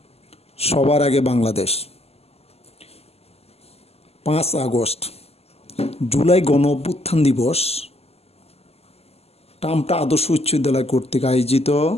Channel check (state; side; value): late; right; 0.29 ms